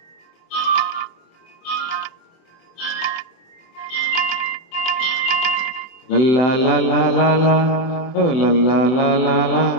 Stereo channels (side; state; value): right; late; 24 ms